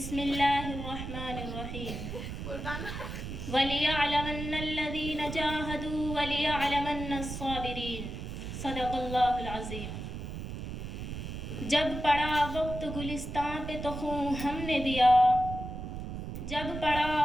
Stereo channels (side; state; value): right; noise; rumble, 7 dB below the sound